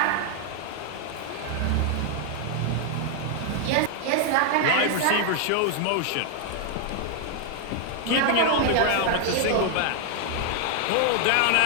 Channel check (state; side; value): different; both; correlation 0.00